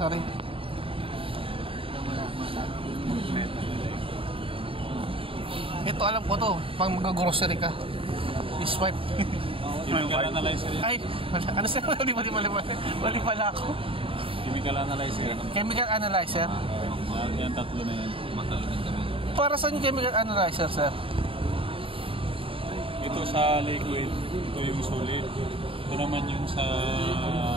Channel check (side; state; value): left; late; 0.26 ms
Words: Ito, alam ko to. Pag mag-grocery ka. I-swipe. Chemical analyzer yan. Ay, ano sir? Mali pala ako. Chemical analyzer. Chemical analyzer. Yan, tatlo na yan. Matalagan kami. Para saan yung chemical analyzer, sir? Ito sa liquid, ito yung solid. Ito naman yung sa